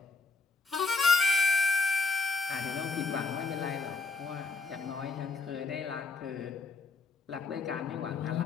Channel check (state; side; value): quieter; right; 3.8 dB